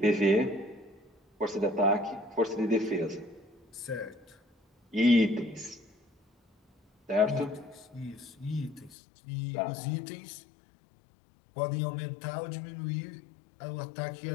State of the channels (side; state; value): right; drops out; at 9.0 s